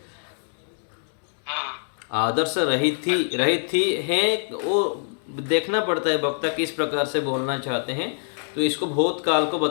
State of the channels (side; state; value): right; silent; digital silence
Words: हाँ, आदर्श रही थी है, वो देखना पड़ता है वक्ता किस प्रकार से बोलना चाहते हैं, तो इसको भूतकाल को